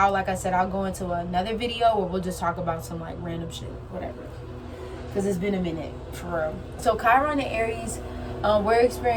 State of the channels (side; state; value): both; identical; correlation 1.00